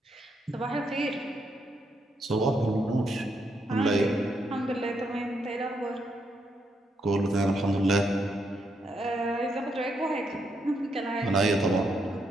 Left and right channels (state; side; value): normal; both; correlation 0.78